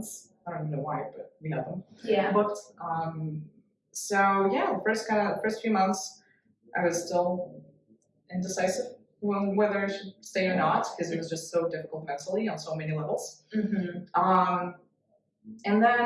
I don't even know why, but we had them booked. So yeah, the first few months, I was still indecisive on whether I should stay or not because it was just so difficult mentally on so many levels. And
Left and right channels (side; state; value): both; identical; correlation 1.00